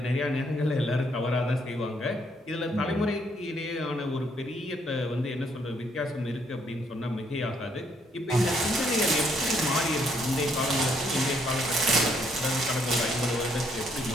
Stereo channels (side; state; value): both; normal; correlation 0.71